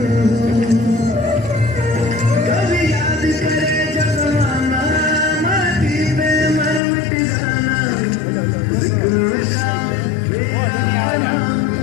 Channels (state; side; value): drops out; right; at 6.8 s